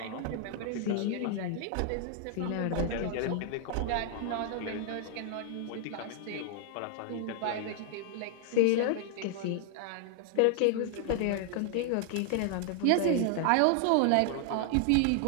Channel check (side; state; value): both; different; correlation 0.00